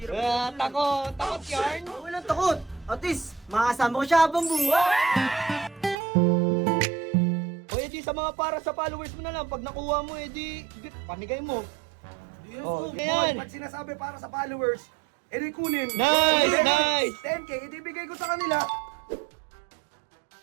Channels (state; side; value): drops out; left; at 6.0 s